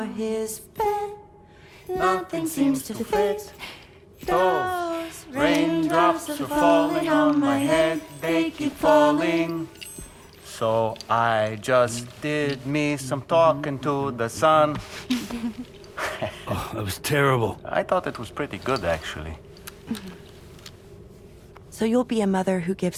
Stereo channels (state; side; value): identical; both; correlation 1.00